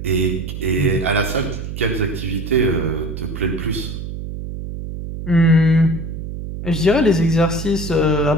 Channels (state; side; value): noise; right; hum, 7 dB below the sound